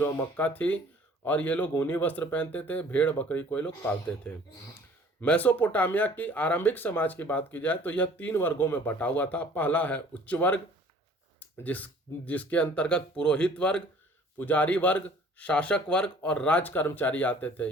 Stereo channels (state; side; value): normal; both; correlation 0.52